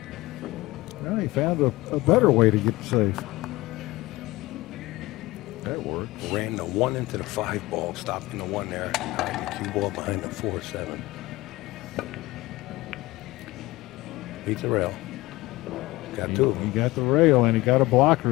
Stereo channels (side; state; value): right; quieter; 19.7 dB